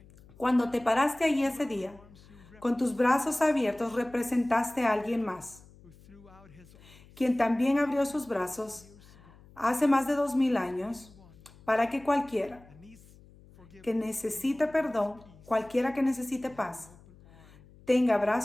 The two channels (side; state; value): left; noise; hum, 24 dB below the sound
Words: cuando te paraste ahí ese día, con tus brazos abiertos representaste a alguien más, quien también abrió sus brazos hace más de 2000 años para que cualquiera que necesite perdón, cualquiera que necesite paz, tenga